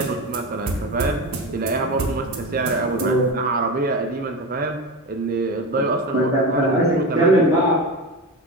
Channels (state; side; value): normal; both; correlation 0.23